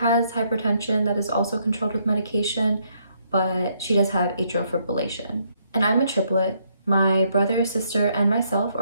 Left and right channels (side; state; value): both; inverted; correlation -0.72